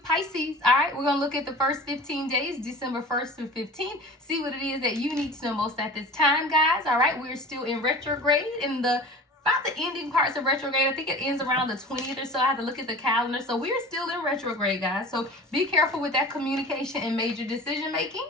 Pisces. All right, we're going to look at the first 15 days, December 1st through 15th. See what it is that you need to know most at this time, guys. All right, we're still in retrograde in about the ending parts of retrograde. I think it ends around the 20th or so. I have to look at the calendar. So we're still in retrograde, guys. So be careful with that communication and major decision making.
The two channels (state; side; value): normal; both; correlation 0.39